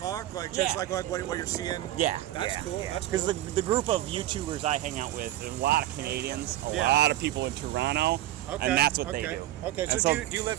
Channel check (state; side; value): quieter; left; 14.2 dB